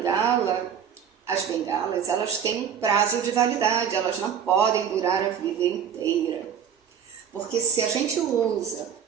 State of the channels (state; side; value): quieter; left; 8.1 dB